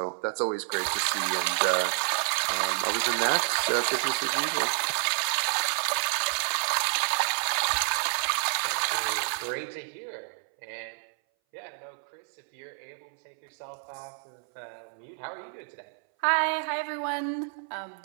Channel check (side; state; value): left; silent; 59 dB below the other